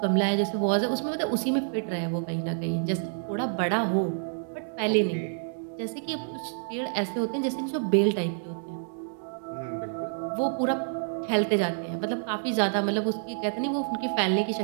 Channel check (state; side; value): silent; left; digital silence